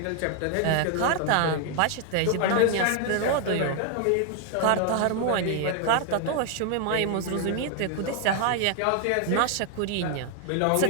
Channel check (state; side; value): different; both; correlation 0.00